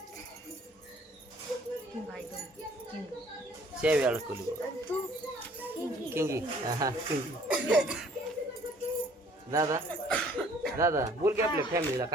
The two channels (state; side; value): normal; both; correlation 0.57